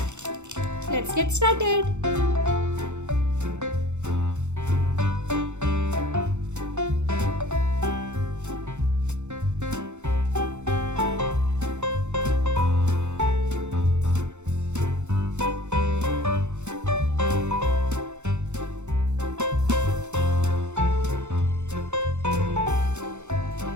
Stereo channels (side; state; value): left; late; 0.83 ms